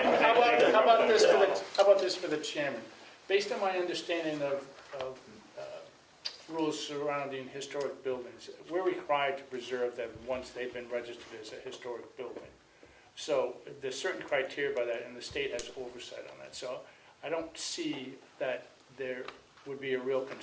about this for the chairman? Based on my understanding of rules surrounding historic buildings, we're required to preserve them once they've been registered as a historic building. So there's certain criteria by that, and the state has oversight on that. So I don't see that there would be a real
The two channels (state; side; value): identical; both; correlation 1.00